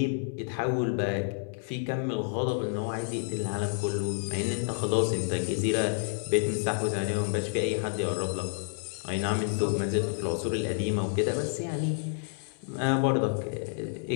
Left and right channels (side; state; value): right; silent; 58 dB below the other